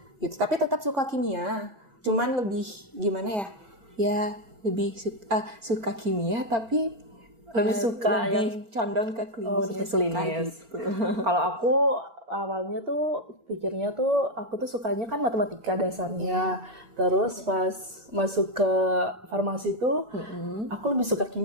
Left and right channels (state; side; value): late; left; 4.4 ms